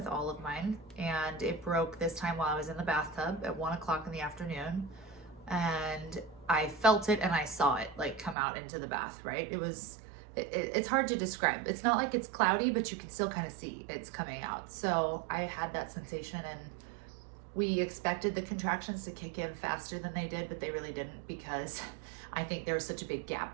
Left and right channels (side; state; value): left; drops out; at 8.3 s